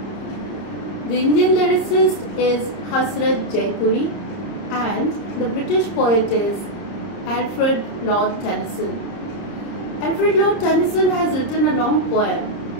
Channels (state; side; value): late; right; 30 ms